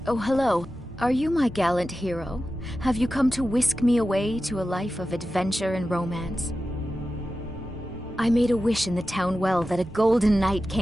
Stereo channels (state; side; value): normal; both; correlation 0.93